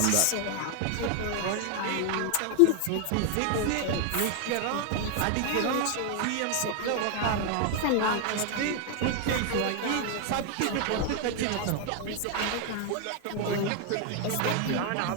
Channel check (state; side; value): different; both; correlation 0.01